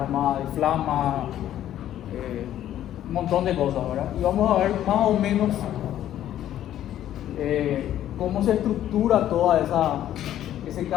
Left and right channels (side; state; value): right; quieter; 11.9 dB